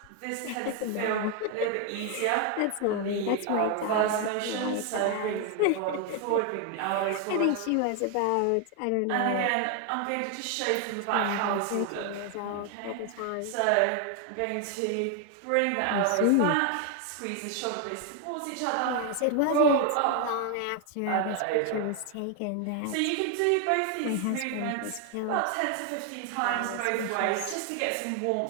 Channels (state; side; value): different; both; correlation 0.01